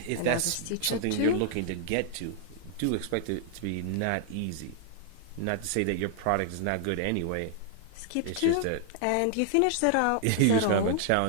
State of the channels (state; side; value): different; both; correlation 0.00